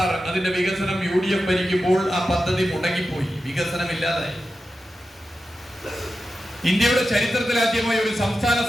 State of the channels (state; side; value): normal; both; correlation 0.91